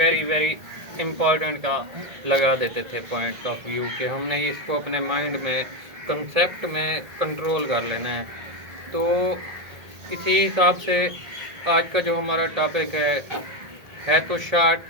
वेरी इम्पॉर्टेंट का लगा देते थे पॉइंट ऑफ व्यू कि हमने इसको अपने माइंड में कंसेप्ट में कंट्रोल कर लेना है। तो इसी हिसाब से आज का जो हमारा टॉपिक है तो शॉर्ट।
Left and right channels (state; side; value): late; left; 1.7 ms